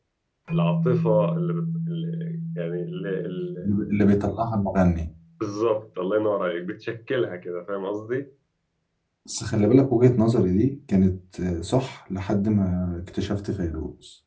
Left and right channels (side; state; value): both; identical; correlation 1.00